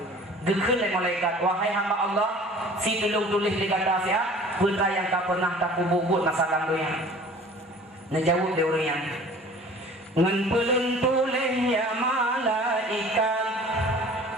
Gekun oleh malaikat wahai hamba Allah si tulung tulis di kata siap putra yang tak pernah tak buat masalah dunia. Najawab dia orang yang ngan pelun tulis ya malaikat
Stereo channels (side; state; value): both; normal; correlation 0.47